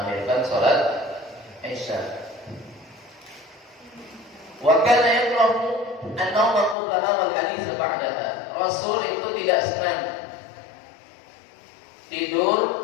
sholat isya. Wa kana yakrahu an-nawma qablaha wal hadits ba'daha. Rasul itu tidak senang tidur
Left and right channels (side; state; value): right; drops out; at 6.8 s